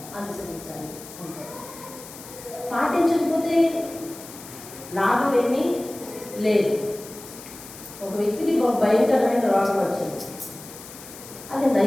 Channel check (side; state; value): left; noise; hiss, 16 dB below the sound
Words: అనుసరించాలి అంటే. పాటించకపోతే లాభం ఏమీ లేదు. ఒక వ్యక్తికి ఒక భయంకరమైన రోగం వచ్చింది, అది